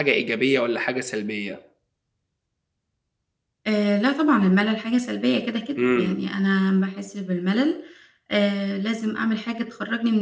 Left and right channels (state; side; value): identical; both; correlation 1.00